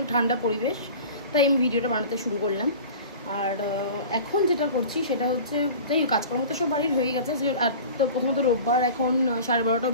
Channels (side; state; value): both; inverted; correlation -0.39